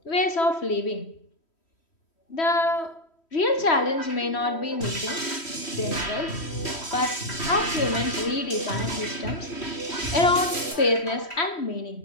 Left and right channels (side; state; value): right; late; 3.1 ms